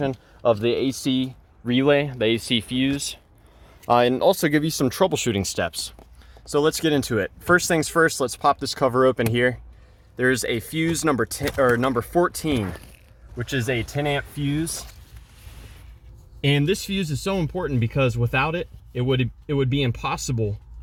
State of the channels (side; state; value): both; identical; correlation 1.00